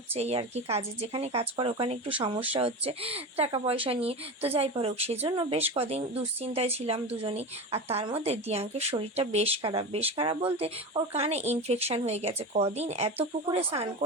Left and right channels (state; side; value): normal; both; correlation 0.25